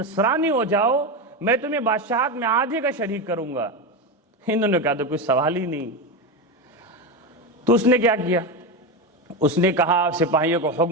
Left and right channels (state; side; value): normal; both; correlation 0.15